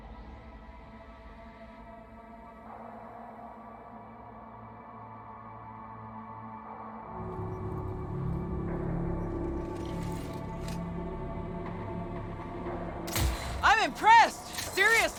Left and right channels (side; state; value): both; identical; correlation 1.00